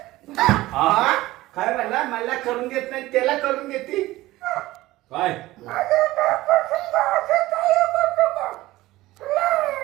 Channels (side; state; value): left; quieter; 17.6 dB